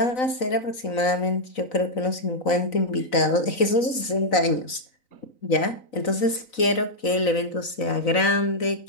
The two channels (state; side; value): late; right; 4.0 ms